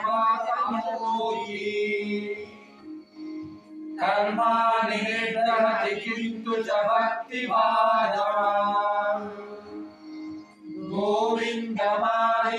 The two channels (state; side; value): identical; both; correlation 1.00